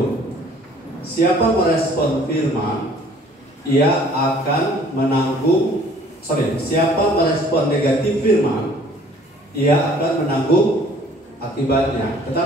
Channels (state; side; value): normal; both; correlation 0.55